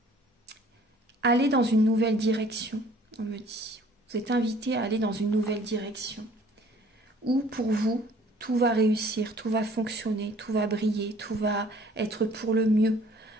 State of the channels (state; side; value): normal; both; correlation 0.54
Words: Allez dans une nouvelle direction, on me dit. Vous êtes invité à aller dans une nouvelle direction. Où pour vous, tout va réussir, tout va fonctionner, tout va briller, tout va être pour le mieux.